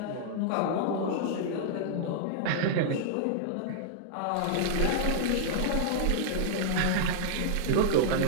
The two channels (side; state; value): both; different; correlation -0.01